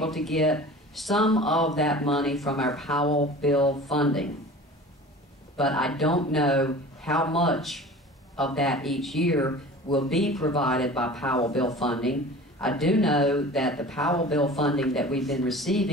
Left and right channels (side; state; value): both; normal; correlation 0.40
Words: to get some of that money from our Powell bill funding. But I don't know how much of that each year will be provided by Powell bill funding. I do know that the Powell bill funding that we've been